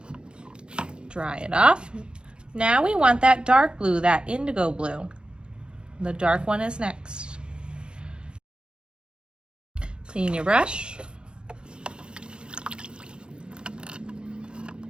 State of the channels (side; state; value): left; late; 0.052 ms